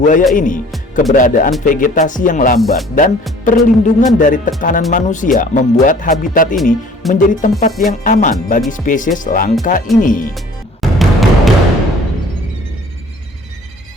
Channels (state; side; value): normal; both; correlation 0.51